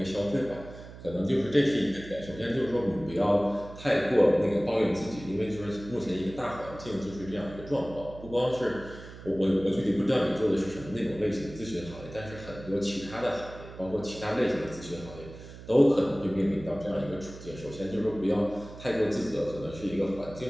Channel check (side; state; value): right; noise; hum, 15 dB below the sound